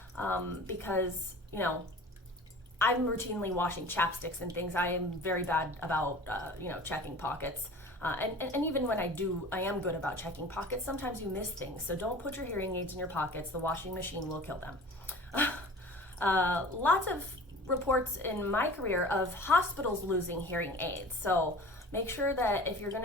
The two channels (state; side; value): normal; both; correlation 0.41